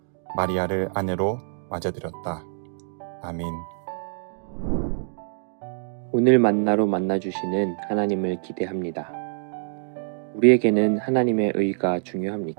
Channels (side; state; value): left; silent; digital silence